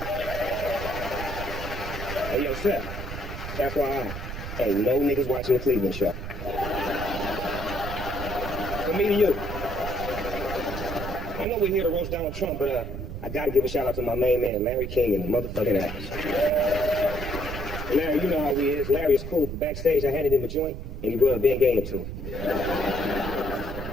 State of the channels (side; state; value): right; noise; rumble, 7 dB below the sound